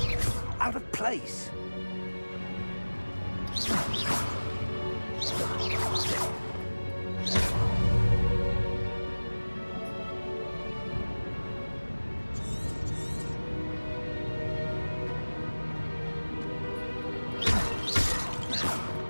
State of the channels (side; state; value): both; inverted; correlation -1.00